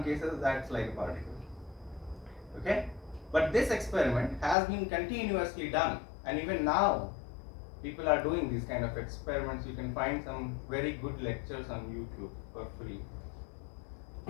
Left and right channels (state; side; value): drops out; right; at 4.5 s